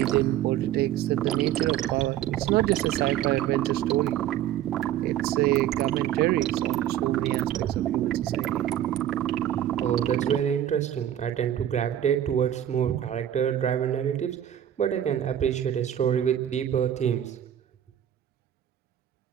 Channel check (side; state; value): left; quieter; 11.3 dB